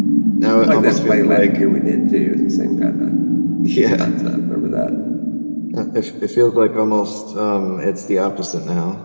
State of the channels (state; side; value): inverted; both; correlation -1.00